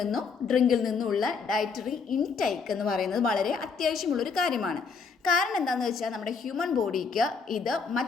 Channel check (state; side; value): quieter; right; 5.2 dB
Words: ഡ്രിങ്കിൽ നിന്നുമുള്ള ഡയറ്ററി ഇൻടേക്ക് എന്ന് പറയുന്നത് വളരെ അത്യാവശ്യമുള്ളൊരു കാര്യമാണ്. കാരണം എന്താണെന്ന് വെച്ചാൽ നമ്മുടെ ഹ്യൂമൻ ബോഡിക്ക് ഇത്